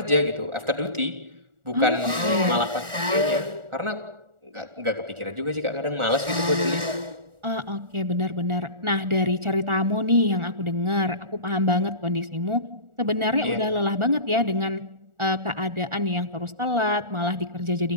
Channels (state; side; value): late; left; 1.4 ms